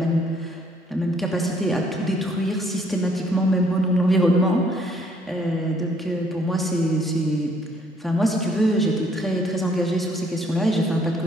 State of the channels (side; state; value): both; normal; correlation 0.65